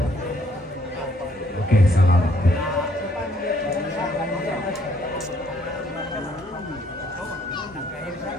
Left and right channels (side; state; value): both; normal; correlation 0.66